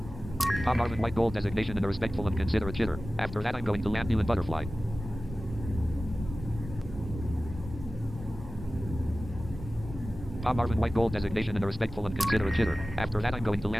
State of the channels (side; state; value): both; normal; correlation 0.96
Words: Palm Marvin White Gold designation and a respectful and considerate jitter. After that I'm going to land you in Butterfly. Palm Marvin White Gold designation and a respectful and considerate jitter. After that I'm going to